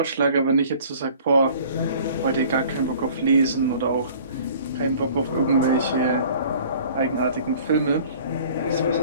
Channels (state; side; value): inverted; both; correlation -0.49